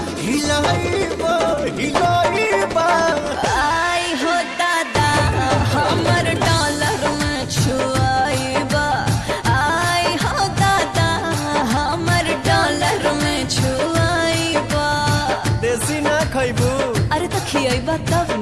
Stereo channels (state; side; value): identical; both; correlation 1.00